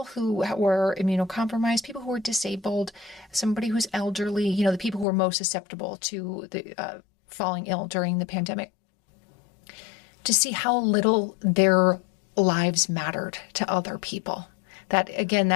who were immunocompromised, people who were disabled, somebody who's elderly, you know, the people who were most susceptible to the falling ill during the pandemic, to see how little their lives mattered to other people. That, again,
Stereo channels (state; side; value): drops out; right; at 5.1 s